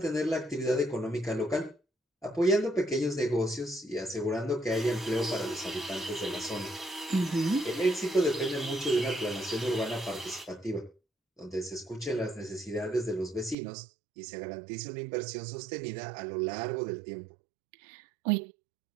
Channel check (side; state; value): left; drops out; at 13.6 s